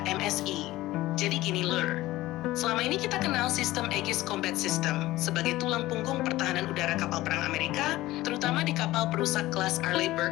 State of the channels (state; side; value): quieter; right; 17.3 dB